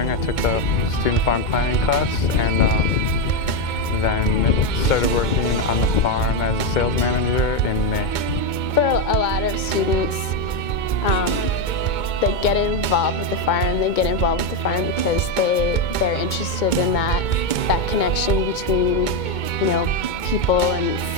I took the student farm planning class and then started working on the farm as a sales manager in May. For a lot of students, they get involved with the farm. They get involved with the farm because they're interested in that connection between, you know, people and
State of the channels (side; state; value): right; late; 2.2 ms